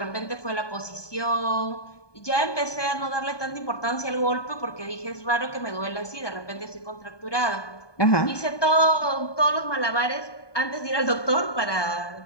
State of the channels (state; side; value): late; right; 1.2 ms